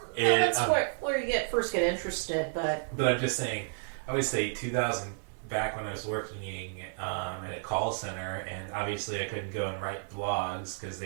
that's where you first get interested, but I'm just saying, I would say 2000, back when I was working at a call center, and obviously I couldn't go and write blogs because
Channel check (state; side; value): silent; left; 57 dB below the other